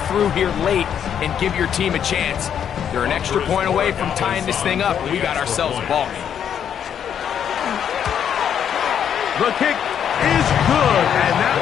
through here late and give your team a chance? They're an extra point away from tying this thing up. We got ourselves a ball game. The kick is good, and that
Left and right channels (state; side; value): quieter; right; 8.7 dB